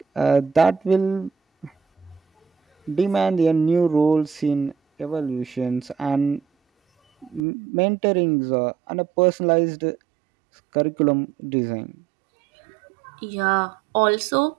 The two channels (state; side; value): drops out; left; at 7.4 s